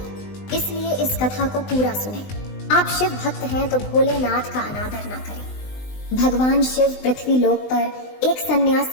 इसलिए इस कथा को पूरा सुने। आप शिव भक्त हैं तो भोलेनाथ का अनादर ना करें। भगवान शिव पृथ्वी लोक पर एक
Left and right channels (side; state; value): right; late; 20 ms